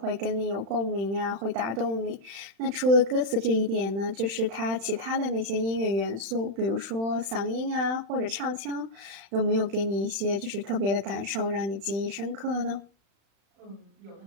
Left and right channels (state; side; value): late; left; 35 ms